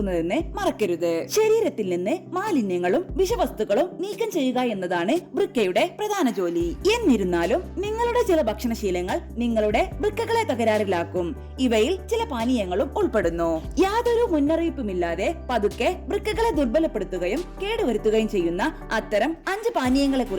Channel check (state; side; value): identical; both; correlation 1.00